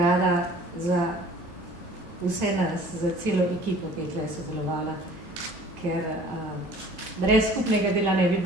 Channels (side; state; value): both; normal; correlation 0.49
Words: za vse nas, za celo ekipo, ki je tukaj sodelovala, ker brez skupnega dela ne bi